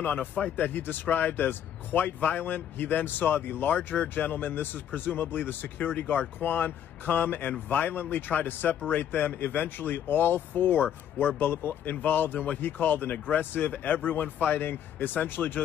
on a fight that he described as quite violent, he then saw the larger gentleman, this is presumably the security guard Quan, come and violently try to separate them. Eventually, all four were involved in what he called an aggressive, everyone fighting, essentially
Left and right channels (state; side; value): quieter; right; 9.8 dB